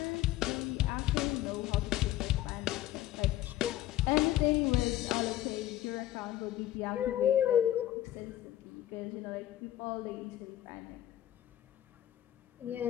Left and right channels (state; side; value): quieter; right; 13.5 dB